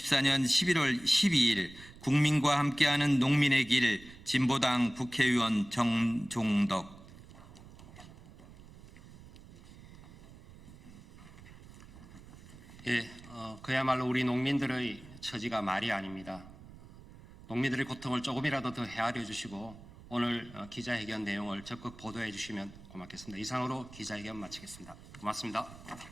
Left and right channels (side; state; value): right; noise; rumble, 19 dB below the sound